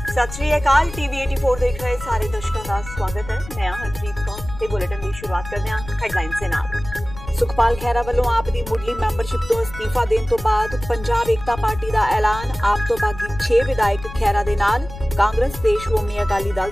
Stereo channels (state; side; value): noise; left; rumble, 13 dB below the sound